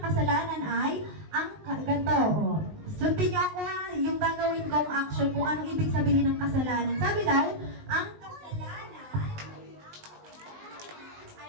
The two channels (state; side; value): late; left; 19 ms